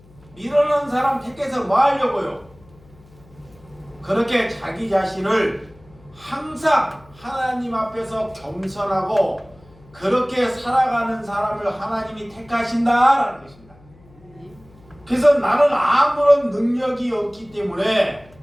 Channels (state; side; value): noise; left; hum, 26 dB below the sound